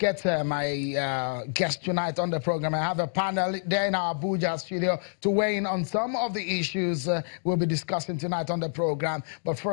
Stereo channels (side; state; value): right; silent; digital silence